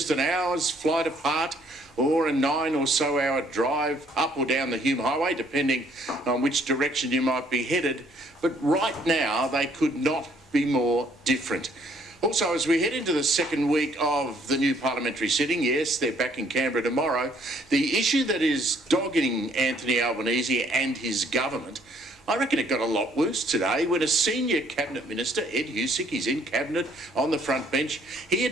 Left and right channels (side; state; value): both; normal; correlation 0.64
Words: an hour's flight apart, or a 9 or so hour drive up or down the Hume Highway, depending on which direction you might be headed. But right now, they could not be more different. Also, as we head into the second week of the new parliamentary sitting, yes, they're back in Canberra tomorrow, the issue that is dogging Anthony Albanese and his government, I reckon it got a lot worse today when a senior cabinet minister, Ed Husic, he's in cabinet on the front bench, he